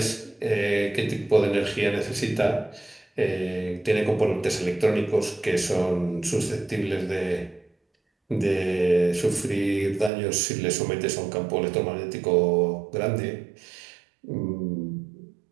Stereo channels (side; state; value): left; drops out; at 10.1 s